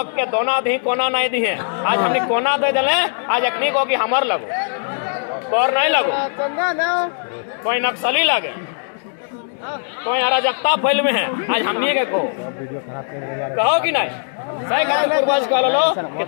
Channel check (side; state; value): right; silent; 66 dB below the other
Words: के दोना दी कोना नहीं दी है आज हमने कोना दे दिले आज अखनी को कि हमर लगो और नहीं लगो कोई नक्सली लगे कोई अराजकता फैल में है आज हमने के कहो कि नहीं सही खातिर पूर्वज कह लो कि